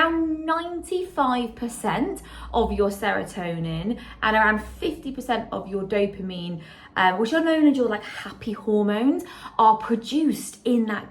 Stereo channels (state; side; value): identical; both; correlation 1.00